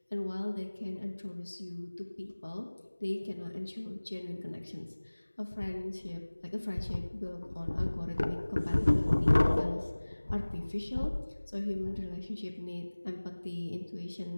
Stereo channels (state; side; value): inverted; both; correlation -1.00